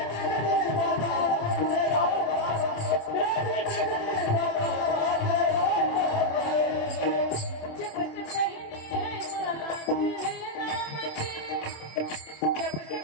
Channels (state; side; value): late; right; 27 ms